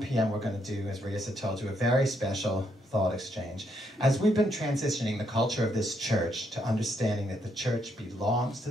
p.m. we're going to do, as Rias had told you, a very special Thought Exchange. As we've been transitioning the culture of this church to understanding that the church belongs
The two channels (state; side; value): normal; both; correlation 0.76